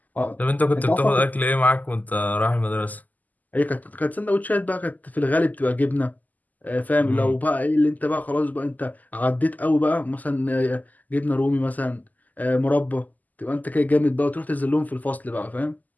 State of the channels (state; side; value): late; right; 0.081 ms